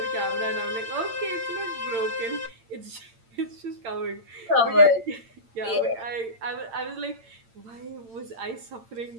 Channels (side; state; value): left; late; 8.8 ms